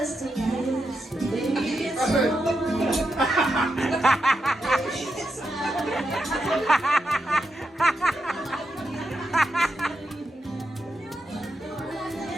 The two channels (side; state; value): both; normal; correlation 0.85